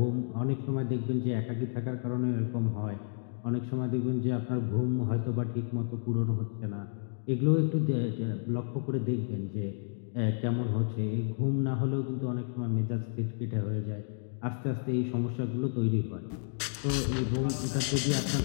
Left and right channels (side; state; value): right; silent; digital silence